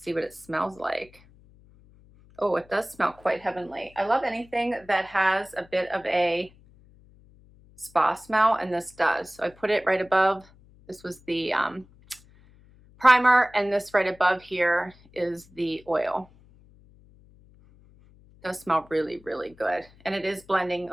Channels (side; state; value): left; noise; hum, 27 dB below the sound